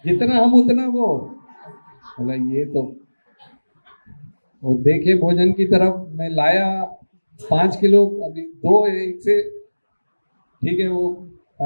जितना हम उतना वो। बोला ये तो वो देखे भोजन की तरफ, मैं लाया 5 किलो, अभी 2 एक से ठीक है वो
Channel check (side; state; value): both; inverted; correlation -1.00